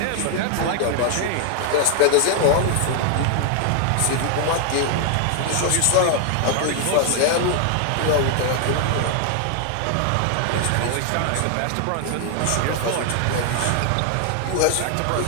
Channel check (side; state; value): both; different; correlation 0.00